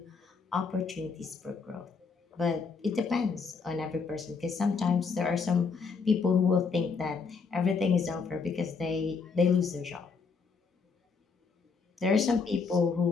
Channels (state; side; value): quieter; right; 5.1 dB